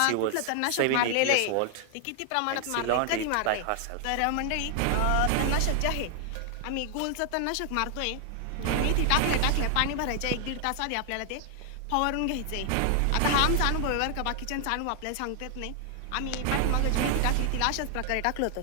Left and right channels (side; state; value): both; different; correlation 0.00